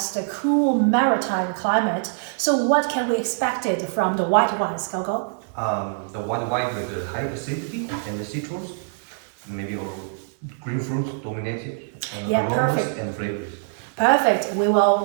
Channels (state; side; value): silent; left; 59 dB below the other